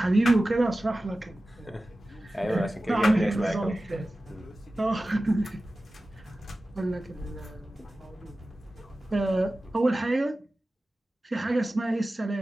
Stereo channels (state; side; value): normal; both; correlation 0.95